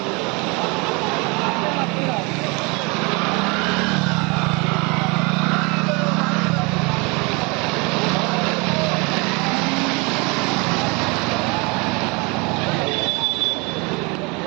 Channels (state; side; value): quieter; left; 28.7 dB